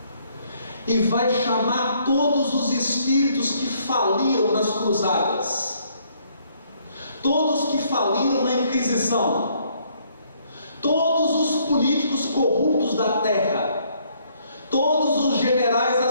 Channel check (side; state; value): both; inverted; correlation -0.67